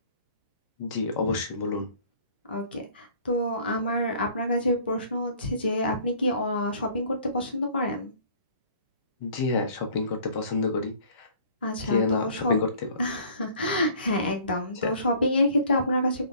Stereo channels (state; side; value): inverted; both; correlation -0.53